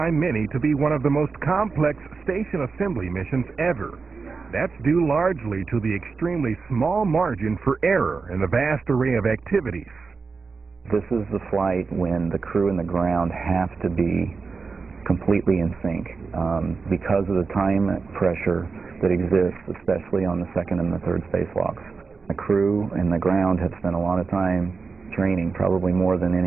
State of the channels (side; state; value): left; quieter; 4.7 dB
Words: many to be one of the most complex station assembly missions ever. That's due largely to the extremely small margin for error in the vast array of activities. This is the flight when the crew and the ground have to be completely in sync because of the time pressure that exists, especially on the second and the third spacewalks. The crew and the ground have spent a lot of time training, probably more than